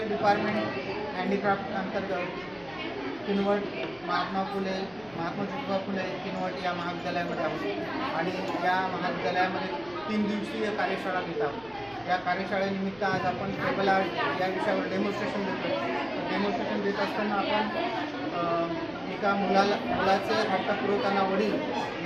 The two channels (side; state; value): right; noise; rumble, 26 dB below the sound